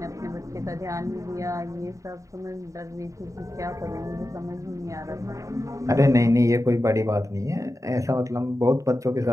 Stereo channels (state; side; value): late; left; 0.16 ms